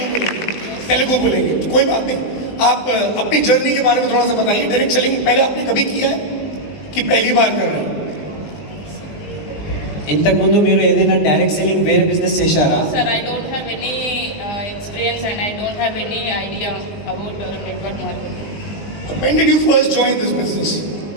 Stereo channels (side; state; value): right; late; 20 ms